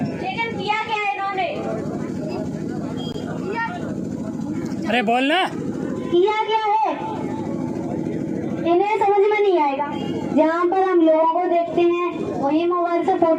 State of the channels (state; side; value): identical; both; correlation 1.00